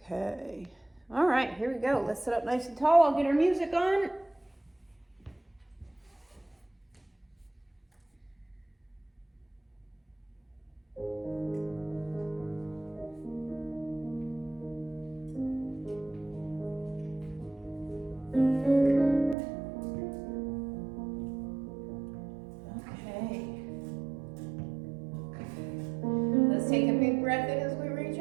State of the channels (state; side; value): drops out; left; at 19.4 s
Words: All right, here we go. Let's sit up nice and tall. I'll get our music on. Okay. Let's take a big breath in as we reach